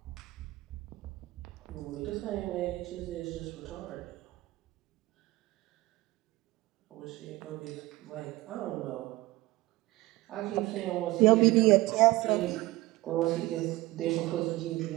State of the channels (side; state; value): left; quieter; 19.4 dB